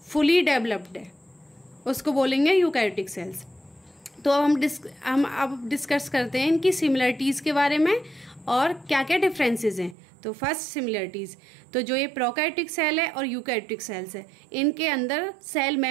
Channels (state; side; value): drops out; left; at 10.0 s